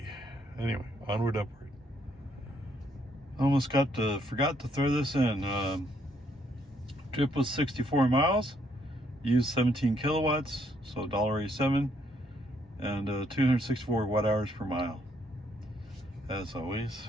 Anyway, onward, upward. Almost forgot to throw this in. Trip was 64 miles. Used 17 kilowatts, so $1.87. And 264 watt hours per mile. As always,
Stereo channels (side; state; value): both; normal; correlation 0.71